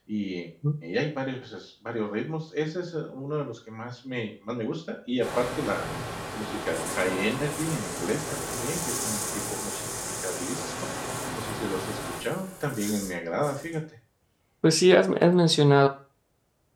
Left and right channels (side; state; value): both; identical; correlation 1.00